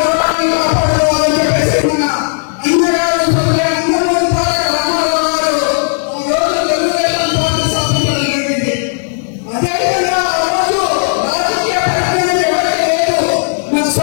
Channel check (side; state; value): right; silent; digital silence